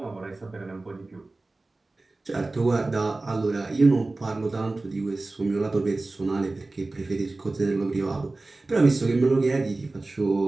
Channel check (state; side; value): quieter; left; 3.2 dB